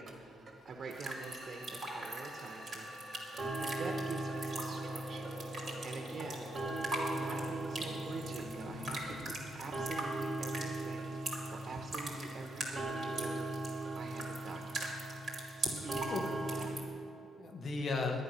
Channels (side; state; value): both; normal; correlation 0.79